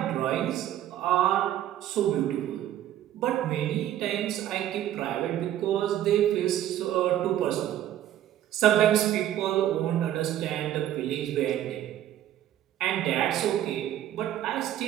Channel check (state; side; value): quieter; left; 12.1 dB